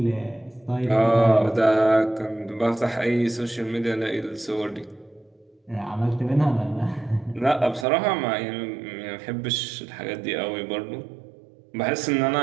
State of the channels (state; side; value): drops out; left; at 7.9 s